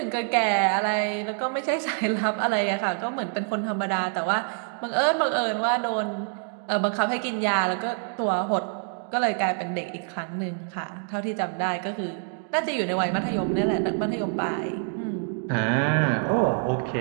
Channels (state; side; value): silent; left; 55 dB below the other